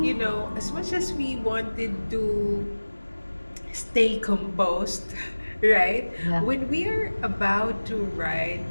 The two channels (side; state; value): both; inverted; correlation -1.00